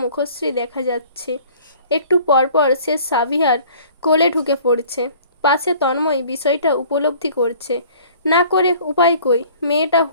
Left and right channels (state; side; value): inverted; both; correlation -0.51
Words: মুখশ্রী দেখা যাচ্ছে। একটু পরপর সে সাভিয়ার কোলে ঢুকে পড়ছে। পাশে তন্ময় বিষয়টা উপলব্ধি করছে। না করে উপায় কই, মেয়েটা